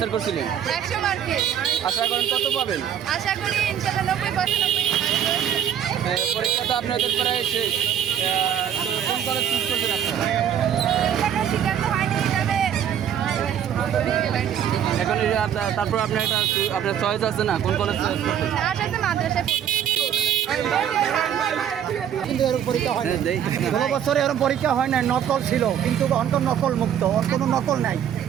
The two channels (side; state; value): left; quieter; 9.4 dB